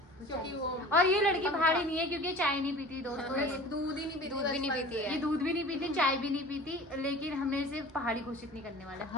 क्योंकि वो और ये लड़की पहाड़ी नहीं है, क्योंकि ये चाय नहीं पीती दोस्तों। ये दूध ही नहीं पीती, दूध भी नहीं पीती है। ये दूध भी नहीं पीती, चाय भी नहीं पीती, लेकिन हमने इसे पहाड़ी घोषित नहीं करने वाले,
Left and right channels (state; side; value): normal; both; correlation 0.41